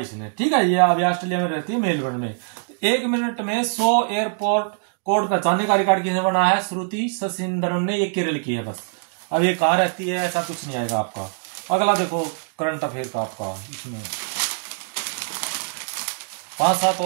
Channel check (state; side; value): silent; left; digital silence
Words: इसने। ठीक है, ये अभी ऑस्ट्रेलिया में रहती है मेलबर्न में। 1 मिनट में 100 एयरपोर्ट कोड पहचानने का रिकॉर्ड किसने बनाया है, श्रुति शशिंद्रन ने। ये केरल की है बस। अब ये कहाँ रहती है ऐसा कुछ नहीं आएगा आपका। अगला देखो करंट अफेयर का आपका, इसमें 5-7